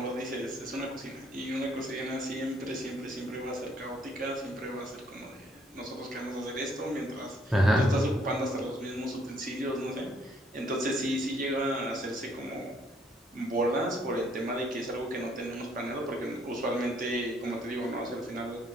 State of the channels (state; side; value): normal; both; correlation 0.66